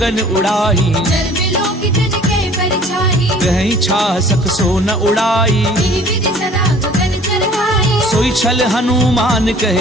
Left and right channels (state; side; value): normal; both; correlation 0.51